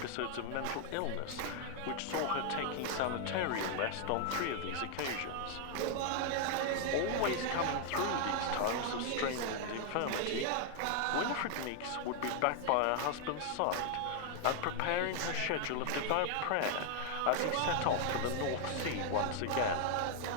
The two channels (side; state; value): both; different; correlation 0.00